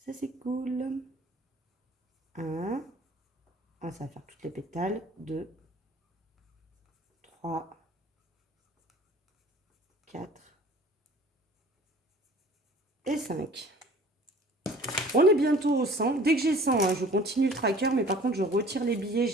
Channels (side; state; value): both; normal; correlation 0.48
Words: Ça, c'est cool. 1. Ça va faire toutes les pétales. 2, 3, 4 et 5. On est bientôt au 100. Dès que j'ai 100, hein, je continue le tracker. Mais par contre, je retire les billets.